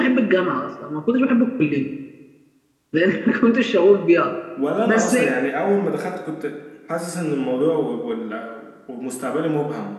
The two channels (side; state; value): both; identical; correlation 1.00